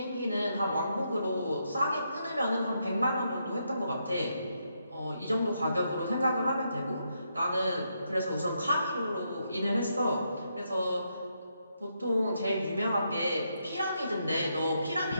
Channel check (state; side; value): inverted; both; correlation -0.79